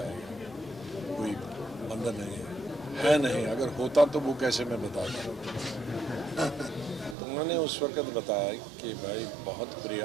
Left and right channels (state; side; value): drops out; left; at 7.2 s